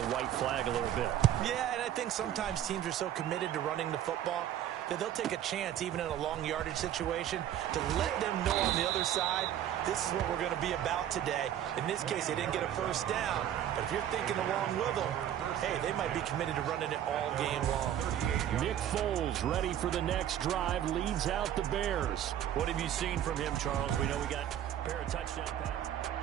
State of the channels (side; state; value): left; quieter; 10.9 dB